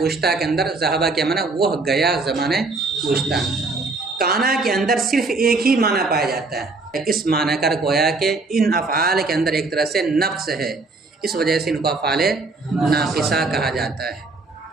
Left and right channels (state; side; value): quieter; left; 3.6 dB